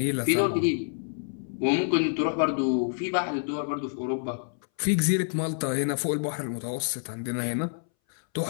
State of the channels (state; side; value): silent; right; 60 dB below the other